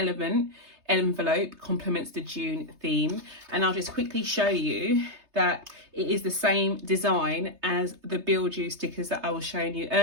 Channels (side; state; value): left; late; 3.3 ms